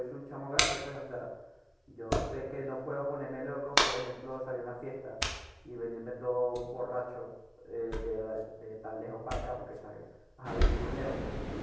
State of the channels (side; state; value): both; identical; correlation 1.00